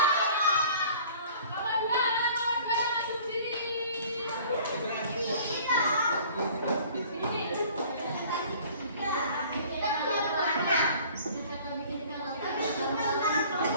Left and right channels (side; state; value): both; inverted; correlation -0.49